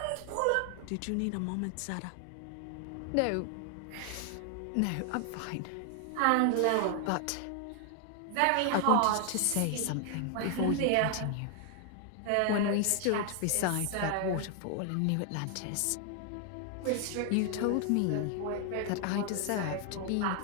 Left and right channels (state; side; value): different; both; correlation 0.00